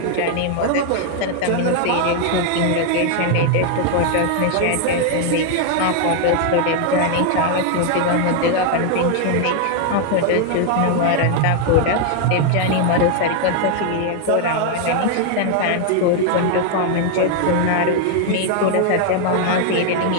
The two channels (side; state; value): both; different; correlation 0.00